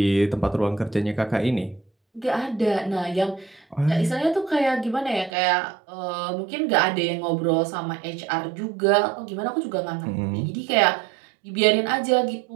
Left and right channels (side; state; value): left; drops out; at 5.3 s